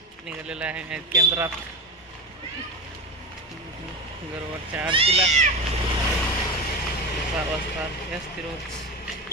निघालेला आहे केंद्रात गुरुवारच्या आरतीला 6 वाजता असते रोज.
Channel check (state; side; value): normal; both; correlation 0.23